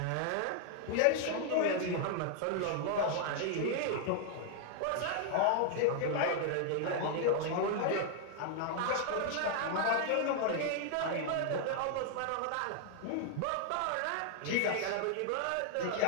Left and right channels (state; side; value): different; both; correlation 0.00